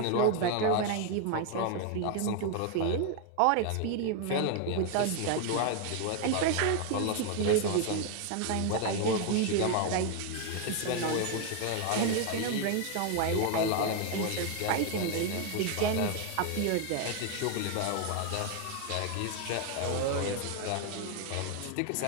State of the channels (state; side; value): different; both; correlation 0.01